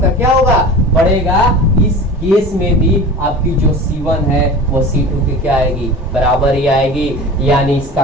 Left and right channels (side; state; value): both; normal; correlation 0.36